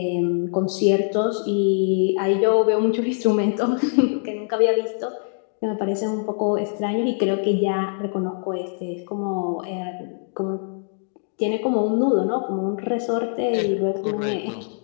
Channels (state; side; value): silent; right; digital silence